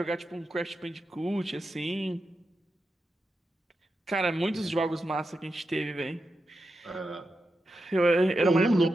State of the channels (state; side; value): normal; both; correlation 0.89